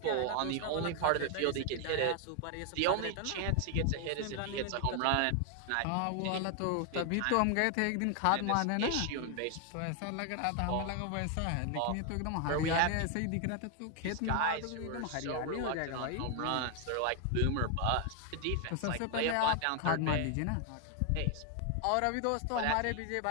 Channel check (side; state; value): both; different; correlation 0.00